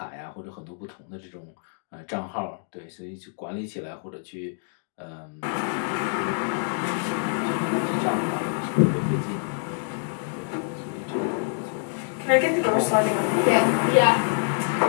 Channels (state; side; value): silent; right; 61 dB below the other